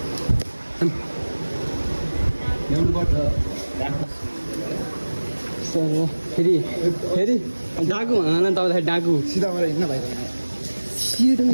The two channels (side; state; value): both; inverted; correlation -1.00